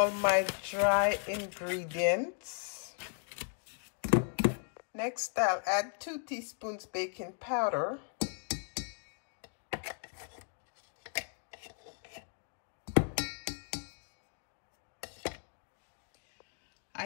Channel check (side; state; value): right; silent; 54 dB below the other